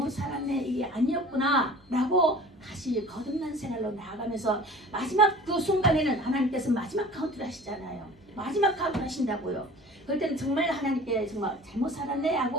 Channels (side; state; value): both; normal; correlation 0.43